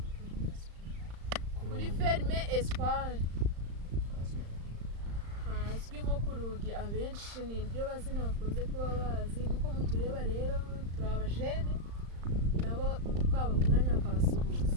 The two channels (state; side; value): late; left; 35 ms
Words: kuri ferme Espoir hazwi nko ku Rugi abenshi ni iryo bazina bakunze kuba bazi nkuko mutureba rero turi abajene nabo twaba ku mwanya bakabasuhuza